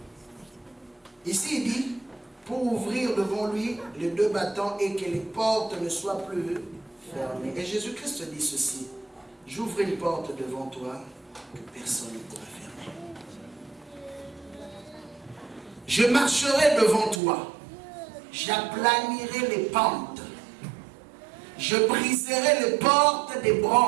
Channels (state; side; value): drops out; left; at 17.2 s